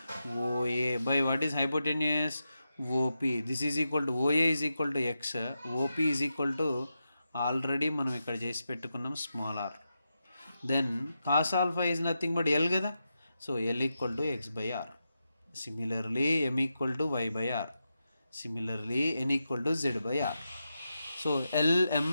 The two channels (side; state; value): both; inverted; correlation -0.88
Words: OA by what is hypotenuse? OP. This is equal to OA is equal to x, OP is equal to already మనం ఇక్కడ చేసి పెట్టుకున్నాం small r. Then cos alpha is nothing but L కదా. So L equal to x by r. Similarly M equal to y by r. Similarly N equal to z by r. So